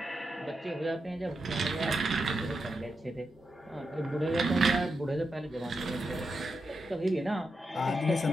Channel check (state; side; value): normal; both; correlation 0.86